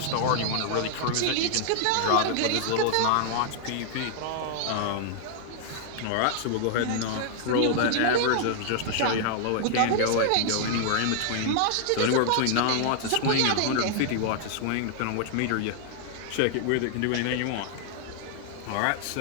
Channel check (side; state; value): both; different; correlation -0.01